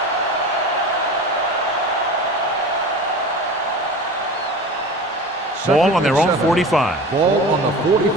Ball on their own 45. Ball on the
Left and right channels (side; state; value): both; normal; correlation 0.34